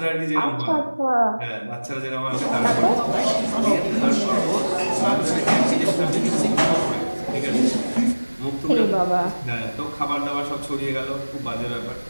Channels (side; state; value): both; inverted; correlation -1.00